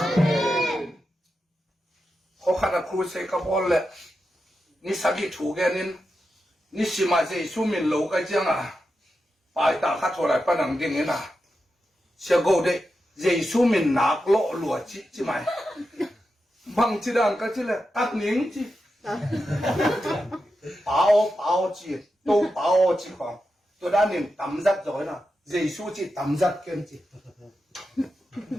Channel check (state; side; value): normal; both; correlation 0.89